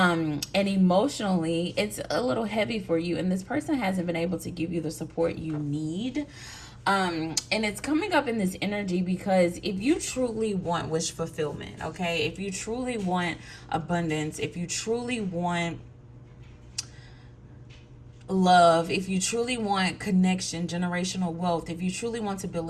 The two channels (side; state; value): both; identical; correlation 1.00